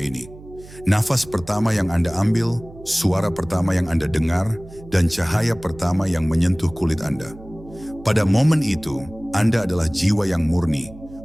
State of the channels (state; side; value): noise; right; hum, 19 dB below the sound